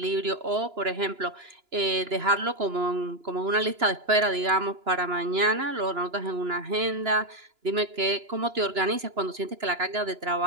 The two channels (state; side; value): late; left; 2.9 ms